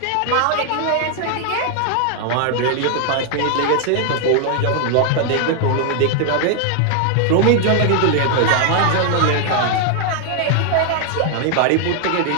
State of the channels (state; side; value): different; both; correlation 0.00